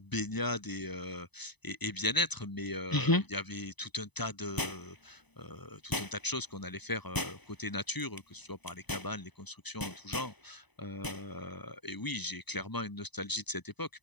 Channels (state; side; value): late; right; 0.99 ms